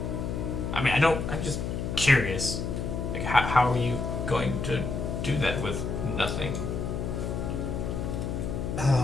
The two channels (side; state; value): left; noise; hum, 3 dB below the sound